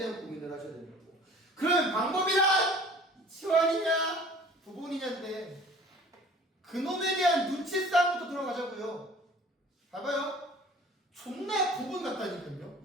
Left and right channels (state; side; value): normal; both; correlation 0.48